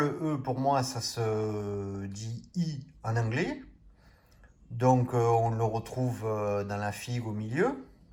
E, pour moi, ça se dit I en anglais. Donc, on le retrouve dans la figue au milieu.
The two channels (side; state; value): both; identical; correlation 1.00